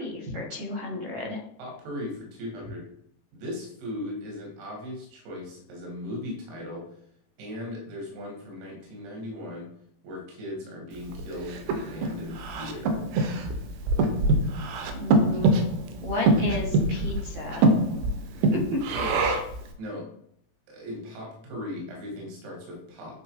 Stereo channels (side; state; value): left; late; 18 ms